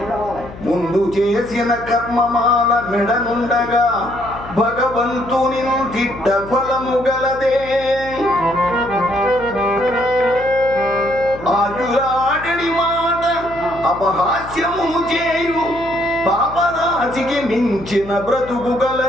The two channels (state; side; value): noise; left; hum, 15 dB below the sound